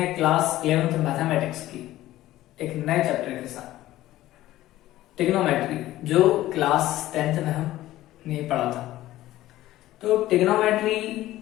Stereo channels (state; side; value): quieter; right; 15.3 dB